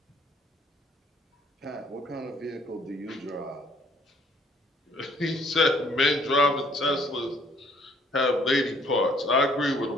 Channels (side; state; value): both; normal; correlation 0.61